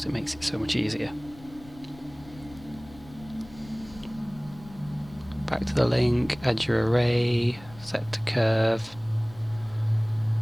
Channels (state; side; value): noise; left; rumble, 20 dB below the sound